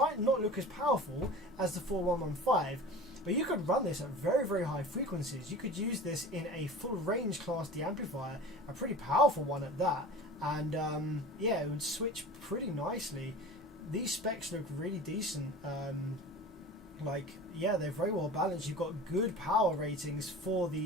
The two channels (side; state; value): both; normal; correlation 0.37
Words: not look as powerful as the 4115, but you could run this at very, very high frequencies. You could use this in a full range class D amplifier, a pretty powerful one at that, and yeah, it would switch pretty nicely. These specs look really decent. Yeah, they're very well balanced. You've got good power ratings for